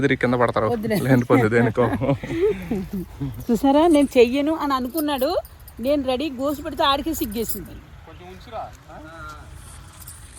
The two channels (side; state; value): both; identical; correlation 1.00